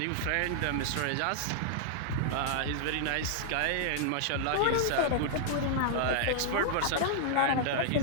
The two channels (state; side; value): different; both; correlation -0.01